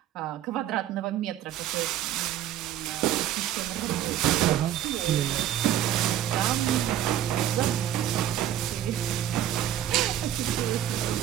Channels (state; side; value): quieter; left; 11.5 dB